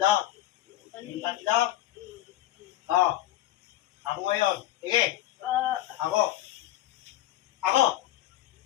Yung tatlo. O. Ako ngayon. Sige. Ako. Ako.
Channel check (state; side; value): quieter; right; 14.6 dB